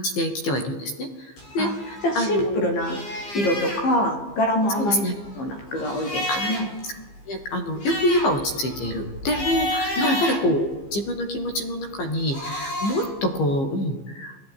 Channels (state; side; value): late; right; 15 ms